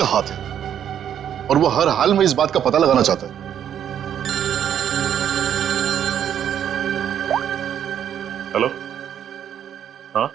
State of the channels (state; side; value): quieter; left; 9.5 dB